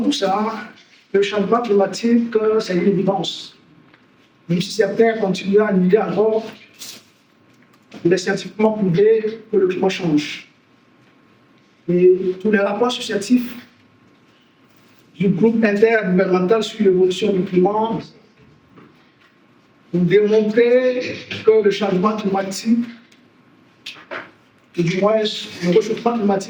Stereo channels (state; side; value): identical; both; correlation 1.00